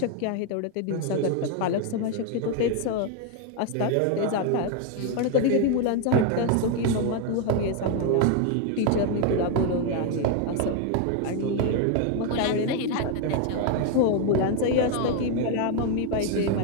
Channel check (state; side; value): different; both; correlation 0.01